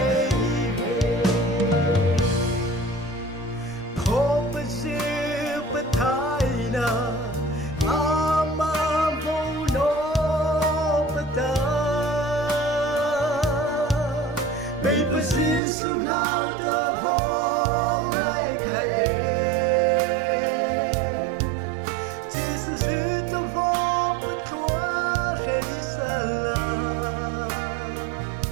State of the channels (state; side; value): drops out; left; at 15.6 s